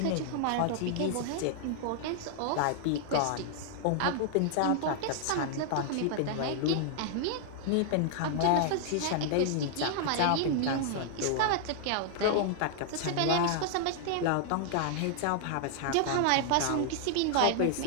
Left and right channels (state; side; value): different; both; correlation -0.01